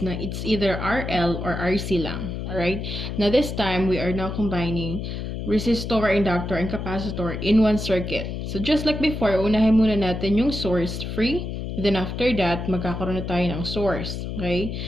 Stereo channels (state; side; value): noise; left; hum, 5 dB below the sound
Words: na it's either RL or RC lang. Alright? Now this time, we are now combining resistor, inductor, and capacitor in one circuit. So just like before, unahin muna natin yung source-free. Then after that, magkakaroon na tayo ng source. Okay?